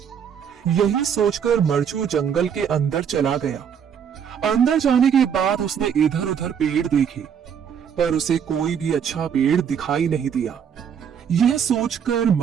यही सोचकर मरचू जंगल के अंदर चला गया। अंदर जाने के बाद उसने इधर उधर पेड़ देखे, पर उसे कोई भी अच्छा पेड़ दिखाई नहीं दिया। यह सोचकर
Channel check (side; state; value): left; quieter; 7.9 dB